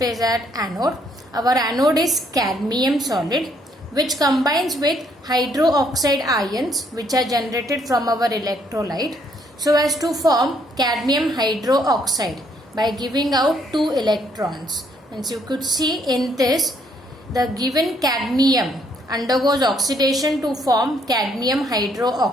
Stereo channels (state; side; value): normal; both; correlation 0.69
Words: at anode. Our anode is cadmium solid, which combines with hydroxide ions which are generated from our electrolyte so as to form cadmium hydroxide by giving out 2 electrons. And you could see in this, the given cadmium undergoes oxidation to form cadmium